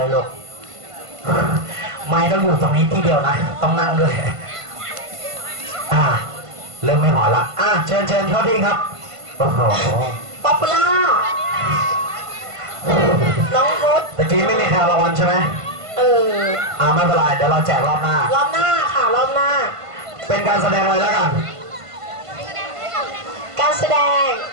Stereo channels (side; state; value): left; late; 1.5 ms